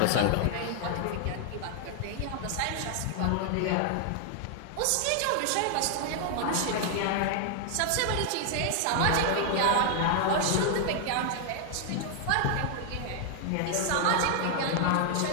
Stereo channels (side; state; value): both; different; correlation 0.00